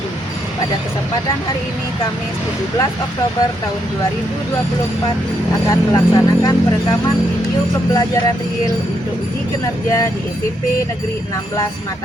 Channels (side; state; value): both; normal; correlation 0.78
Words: Pada kesempatan hari ini, Kamis 17 Oktober tahun 2024, akan melaksanakan perekaman video pembelajaran real untuk uji kinerja di SMP Negeri 16